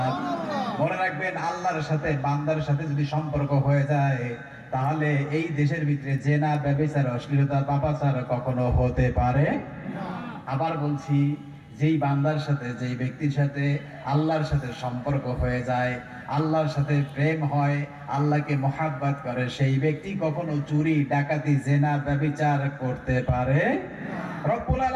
মনে রাখবেন, আল্লাহর সাথে বান্দার সাথে যদি সম্পর্ক হয়ে যায়, তাহলে এই দেশের ভিতরে জেনা, ব্যভিচার, অশ্লীলতা, পাপাচার কখনো হতে পারে না। আবার বলছি, যেই বান্দার সাথে, যেই ব্যক্তির সাথে আল্লাহর সাথে সম্পর্ক হয়ে যায়, আল্লাহর সাথে প্রেম হয়, আল্লাহকে মহাব্বত করে, সেই ব্যক্তি কখনো চুরি, ডাকাতি, জেনা, ব্যভিচার করতে পারে না। রব্বুল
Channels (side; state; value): both; identical; correlation 1.00